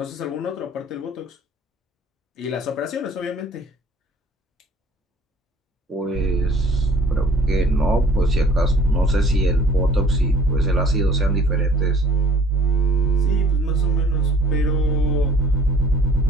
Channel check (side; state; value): both; normal; correlation 0.54